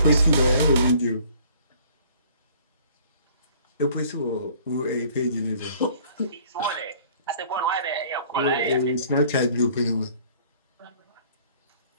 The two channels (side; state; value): both; inverted; correlation -0.55